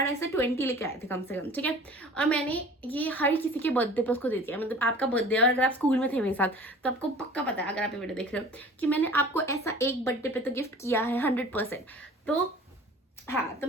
ऐसे 20 लेके आए थे कम से कम। ठीक है, और मैंने ये हर किसी के बर्थडे पे उसको दे दिया। मतलब आपका बर्थडे, और अगर आप स्कूल में थे मेरे साथ तो आपको पक्का पता है, अगर आप ये वीडियो देख रहे हो, कि मैंने आपको ऐसा एक बर्थडे पे तो गिफ्ट किया है 100%। तो हाँ, तो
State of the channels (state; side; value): normal; both; correlation 0.45